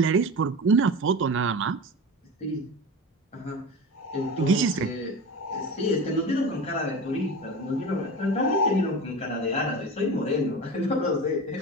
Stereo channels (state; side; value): normal; both; correlation 0.30